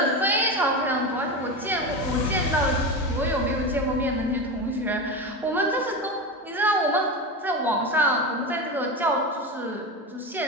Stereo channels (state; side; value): normal; both; correlation 0.21